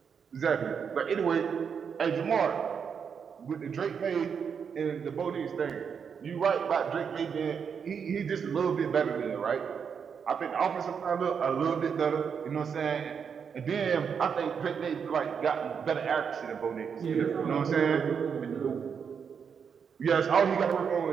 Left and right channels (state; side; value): quieter; left; 6.7 dB